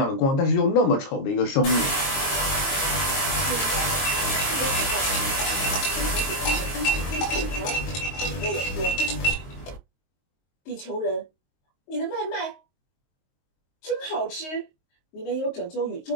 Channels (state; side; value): late; right; 22 ms